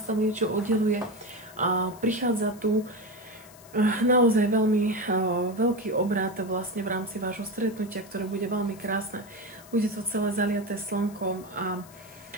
tam niečo oddeluje. Prichádza tu naozaj veľmi veľký obrat vlastne v rámci vášho stretnutia, ktoré bude veľmi krásne. Bude to celé zaliaté slnkom a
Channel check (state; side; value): noise; left; hiss, 22 dB below the sound